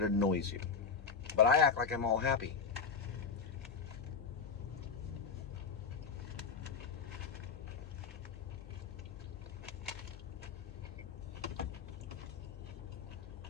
annoys you. But I act like I'm all happy.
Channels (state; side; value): quieter; right; 5.6 dB